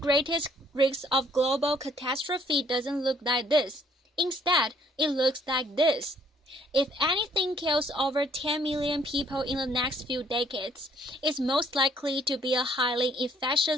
risk of global catastrophe doesn't look like this. Instead, it looks like this. If anything kills over 10 million people in the next few decades, it's most likely to be a highly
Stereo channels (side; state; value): both; normal; correlation 0.64